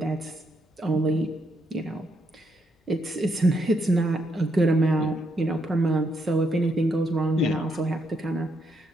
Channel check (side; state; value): both; normal; correlation 0.77